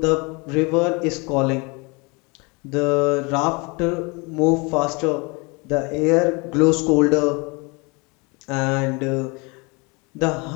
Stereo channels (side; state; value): right; quieter; 28.9 dB